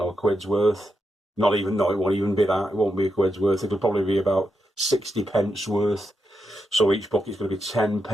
a quid's worth. Not even, no, it won't even be that. It won't be a quid's worth. It'll probably be about 60 pence worth. So each bucket's going to be 10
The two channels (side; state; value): both; normal; correlation 0.85